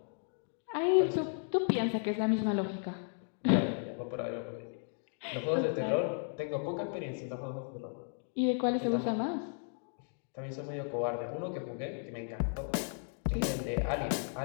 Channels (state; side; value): silent; right; 55 dB below the other